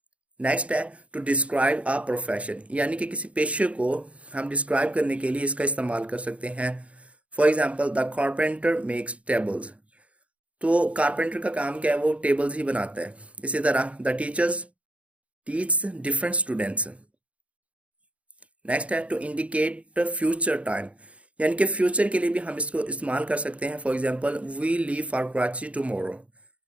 Next है टू डिस्क्राइब अ प्रोफेशन, यानी कि किसी पेशे को हम डिस्क्राइब करने के लिए इसका इस्तेमाल कर सकते हैं। For example, the carpenter makes tables, तो कारपेंटर का काम क्या है, वो टेबल्स ही बनाता है। इसी तरह the teachers teach different students. Next है टू इंडिकेट फ्यूचर टाइम, यानी कि फ्यूचर के लिए भी हम इसको इस्तेमाल कर सकते हैं। For example, we leave for Karachi tomorrow,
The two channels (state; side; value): late; left; 0.063 ms